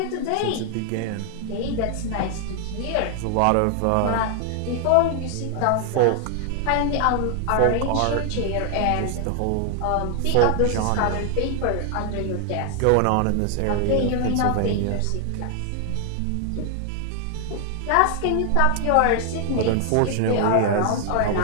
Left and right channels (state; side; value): different; both; correlation 0.00